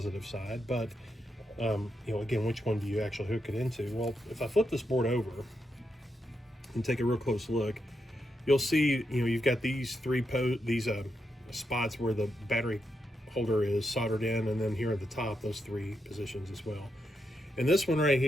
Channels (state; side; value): normal; both; correlation 0.84